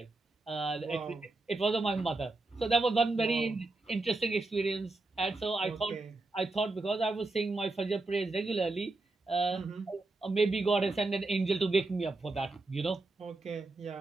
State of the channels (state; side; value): quieter; left; 3.2 dB